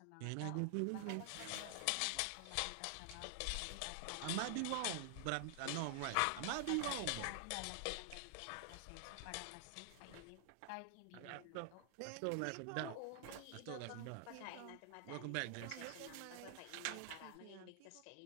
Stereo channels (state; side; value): different; both; correlation 0.00